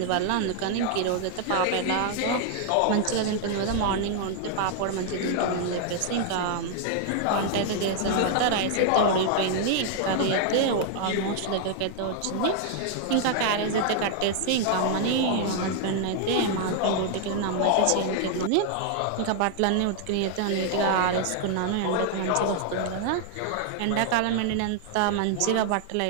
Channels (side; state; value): both; different; correlation 0.00